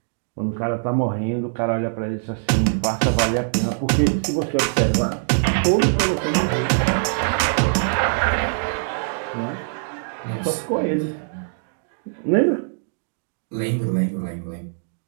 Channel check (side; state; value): left; silent; digital silence